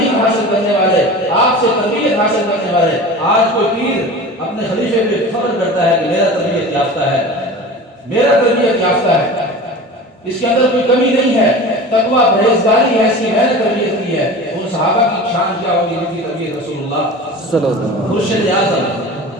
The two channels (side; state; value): both; normal; correlation 0.35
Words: حاصل کرنے والے، آپ سے تربیت حاصل کرنے والے۔ آج کوئی پیر اپنے خلیفے پہ فخر کرتا ہے کہ میرا تربیت یافتہ ہے، میرا تربیت یافتہ ہے، اس کے اندر کوئی کمی نہیں ہے. تقویٰ پرہیزگاری ایسی میں نے تربیت کی ہے. ان صحابہ کی شان کیا ہوگی جن کی تربیت رسول اللہ صلی اللہ علیہ وسلم. مرشد اعظم،